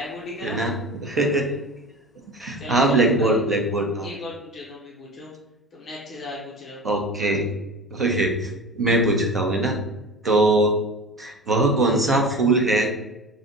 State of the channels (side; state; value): both; normal; correlation 0.33